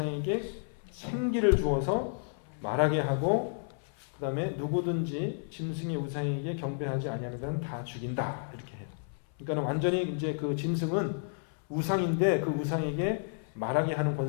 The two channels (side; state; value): right; silent; 57 dB below the other